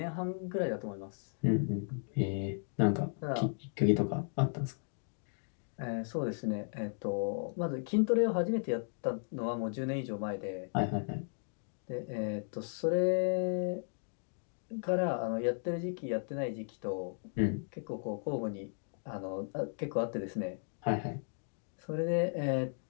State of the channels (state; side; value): silent; right; digital silence